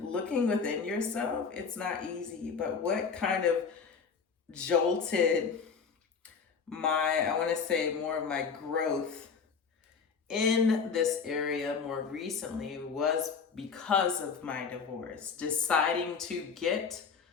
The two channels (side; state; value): right; quieter; 5.7 dB